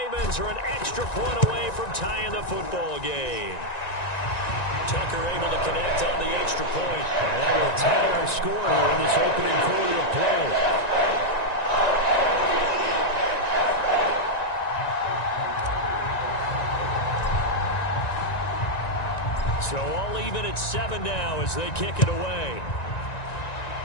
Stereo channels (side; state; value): right; late; 1.9 ms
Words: are an extra point away from tying the football game. Tucker able to connect on the extra point. And that will tie our score here in this opening quarter of play. So all even at 7 now as they kick it away.